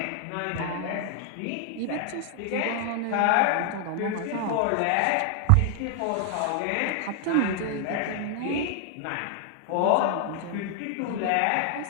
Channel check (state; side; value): different; both; correlation 0.00